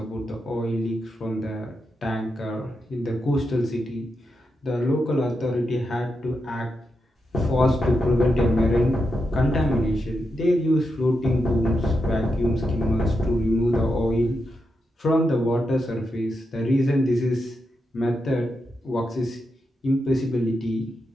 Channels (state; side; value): normal; both; correlation 0.86